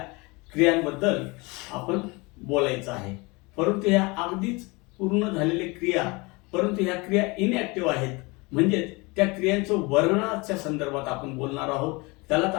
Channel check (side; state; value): right; quieter; 26.2 dB